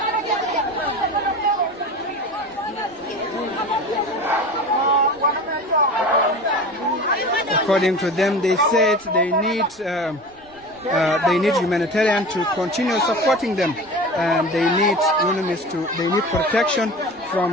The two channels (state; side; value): noise; right; rumble, 28 dB below the sound